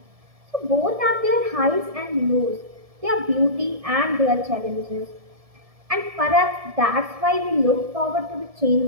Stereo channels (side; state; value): left; late; 1.7 ms